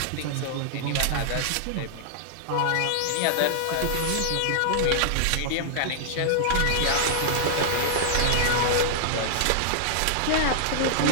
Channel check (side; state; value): both; different; correlation -0.01